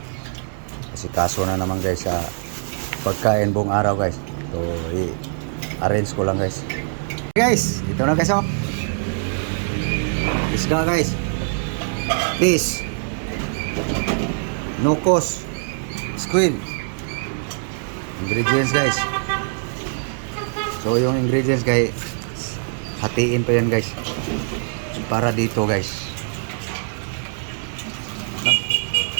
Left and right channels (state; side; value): silent; left; digital silence